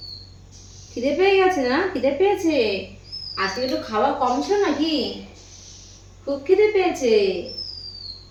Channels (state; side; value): identical; both; correlation 1.00